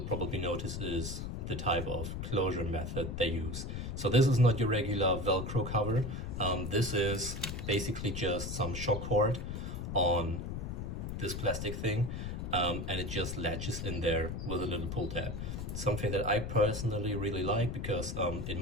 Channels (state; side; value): noise; left; rumble, 5 dB below the sound